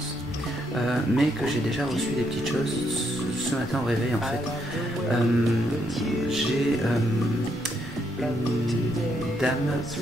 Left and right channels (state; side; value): normal; both; correlation 0.76